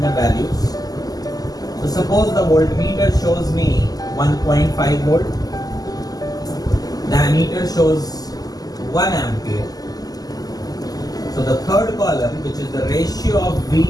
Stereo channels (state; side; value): late; right; 0.18 ms